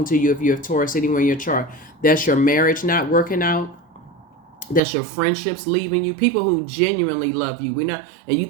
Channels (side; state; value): left; drops out; at 4.8 s